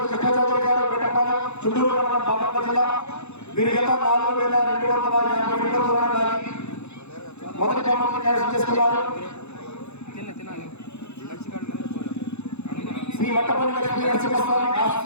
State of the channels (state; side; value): late; right; 0.81 ms